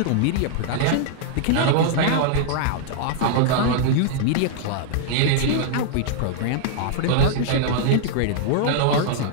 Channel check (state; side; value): different; both; correlation -0.01